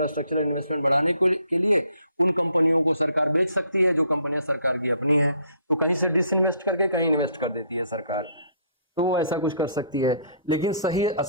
इन्वेस्टमेंट बढ़ाने के लिए उन कंपनियों को सरकार बेच सकती है जो कंपनियां सरकार की अपनी है। तो कहीं से डिसइन्वेस्ट करके कहीं इन्वेस्ट कर देती है सरकार, तो वो ऐसा कुछ कर सकती है। लेकिन सही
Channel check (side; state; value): both; inverted; correlation -0.63